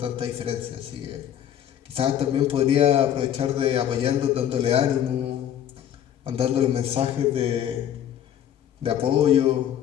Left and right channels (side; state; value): right; quieter; 10.3 dB